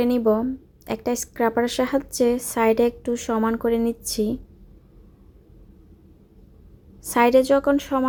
নিব। একটা স্ক্রাবারের সাহায্যে সাইডে একটু সমান করে নিচ্ছি। সাইডে যখন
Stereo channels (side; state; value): both; identical; correlation 1.00